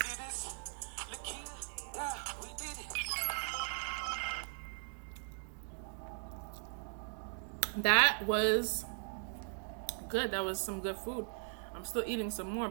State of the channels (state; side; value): silent; left; digital silence